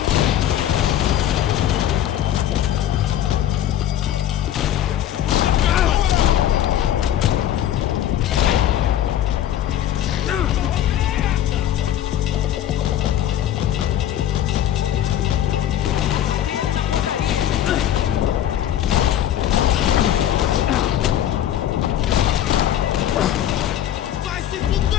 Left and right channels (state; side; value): quieter; right; 11.3 dB